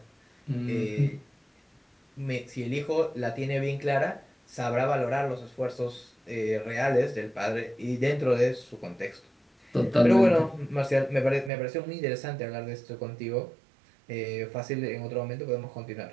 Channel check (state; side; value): drops out; left; at 11.5 s